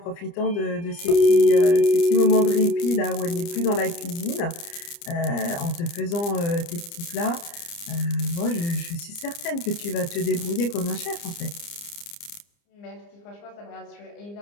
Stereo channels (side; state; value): right; late; 29 ms